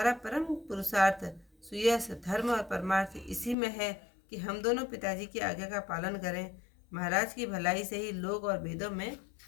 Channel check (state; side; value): drops out; right; at 3.6 s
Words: परम पुरुषार्थ सुयश धर्म और परमार्थ इसी में है कि हम दोनों पिताजी की आज्ञा का पालन करें। महाराज की भलाई से ही लोक और वेदों में